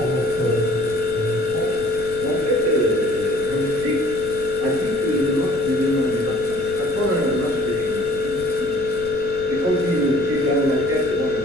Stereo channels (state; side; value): noise; left; rumble, 18 dB below the sound